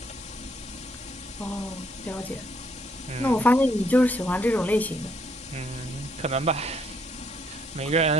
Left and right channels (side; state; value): both; normal; correlation 0.70